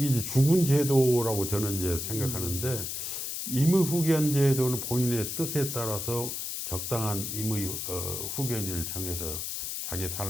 주군 제도라고 저는 이제 생각하는데 임의 후견 제도는 본인의 뜻에 따라서 적당한 임의 후견을 정해서 자기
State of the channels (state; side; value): noise; left; hiss, 4 dB below the sound